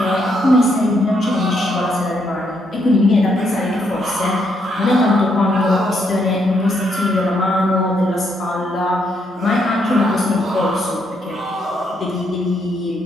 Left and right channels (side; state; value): both; normal; correlation 0.75